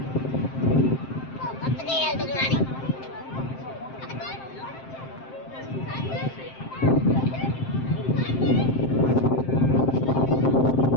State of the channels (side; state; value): right; late; 7.6 ms